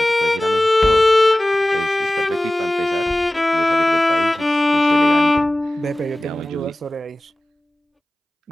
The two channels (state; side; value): normal; both; correlation 0.97